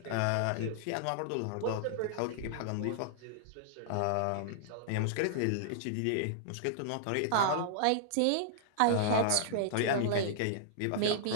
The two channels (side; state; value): both; different; correlation -0.01